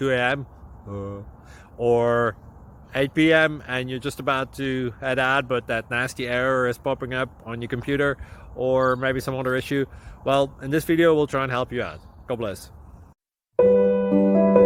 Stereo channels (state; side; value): identical; both; correlation 1.00